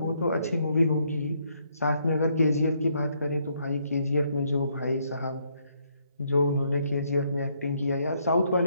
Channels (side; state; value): both; inverted; correlation -0.72